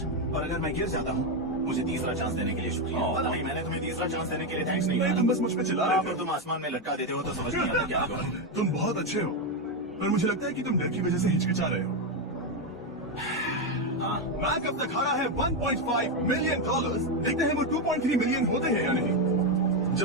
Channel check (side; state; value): both; normal; correlation 0.07